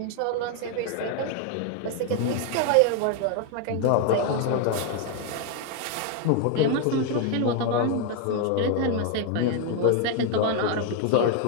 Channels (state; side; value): different; both; correlation 0.01